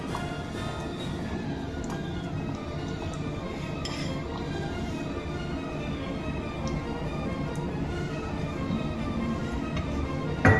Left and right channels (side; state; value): both; identical; correlation 1.00